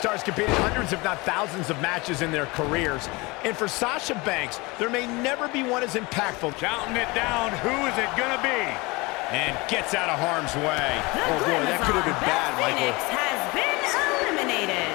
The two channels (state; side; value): quieter; right; 24.6 dB